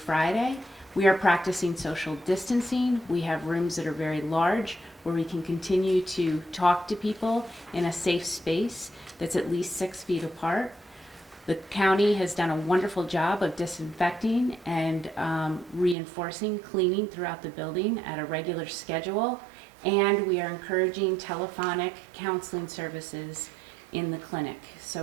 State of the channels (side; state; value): left; drops out; at 16.0 s